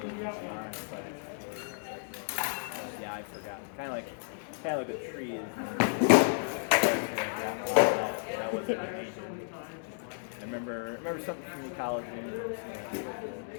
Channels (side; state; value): right; silent; digital silence